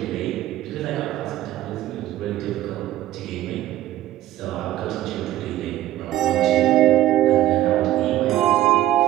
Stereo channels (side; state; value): left; quieter; 14.2 dB